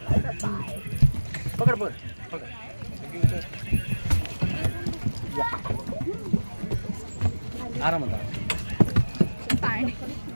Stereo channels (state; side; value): inverted; both; correlation -1.00